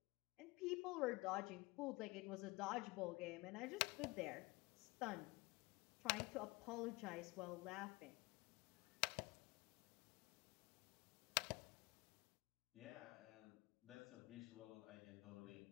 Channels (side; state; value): right; quieter; 23.8 dB